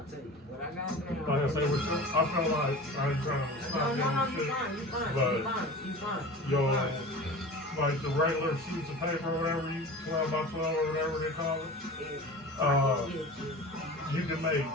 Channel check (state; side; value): normal; both; correlation 0.36